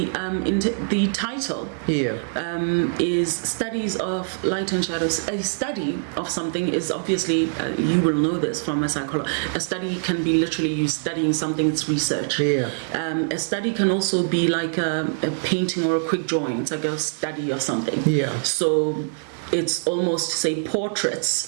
title is Studies of Light and Shadows. A study of something is obviously, you will know this from a psychologist, a study can be literally you studying something, it's research. A study can also be like a painting or a quick drawing. It's like a study of something. So it's almost, say,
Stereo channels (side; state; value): left; silent; digital silence